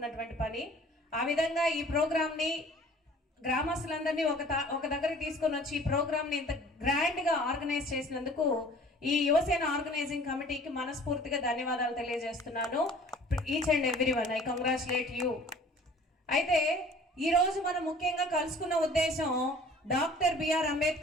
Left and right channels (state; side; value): normal; both; correlation 0.49